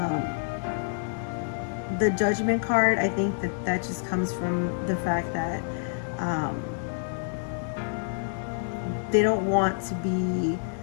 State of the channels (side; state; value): right; silent; digital silence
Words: The Judgment card, I think that just comes from the fact that they don't want to be